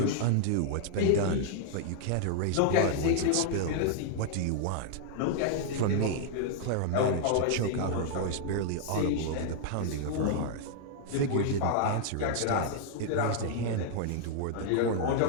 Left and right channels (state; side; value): different; both; correlation -0.01